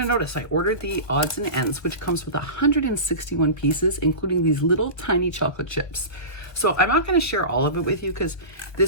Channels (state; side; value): late; right; 1.3 ms